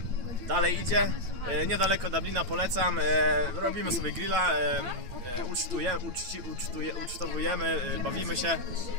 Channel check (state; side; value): late; left; 9.0 ms